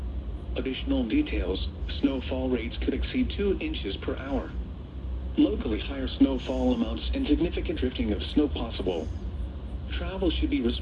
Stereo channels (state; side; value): identical; both; correlation 1.00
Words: Additional details, snowfall rates could exceed 2 inches per hour. Locally higher snowfall amounts and significant drifting of snow possible. Travel should be